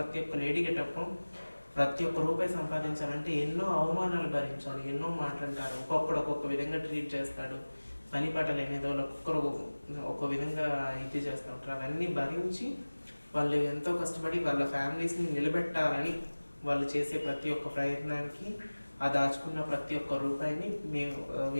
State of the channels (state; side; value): inverted; both; correlation -1.00